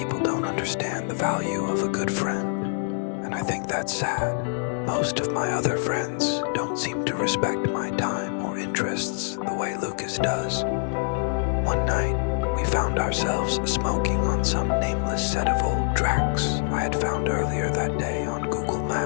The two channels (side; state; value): right; silent; digital silence